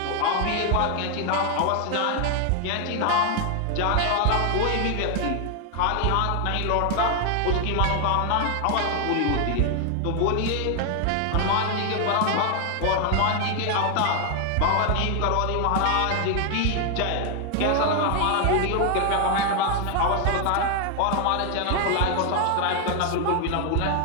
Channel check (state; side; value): different; both; correlation 0.00